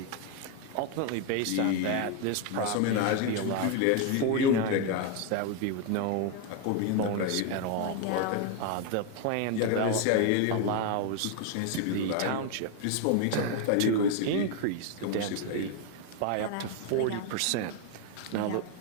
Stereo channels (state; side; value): different; both; correlation 0.01